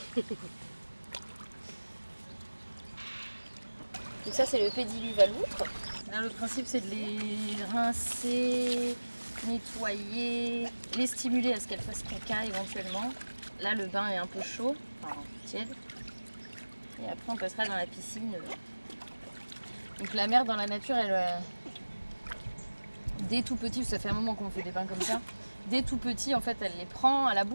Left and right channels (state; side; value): inverted; both; correlation -1.00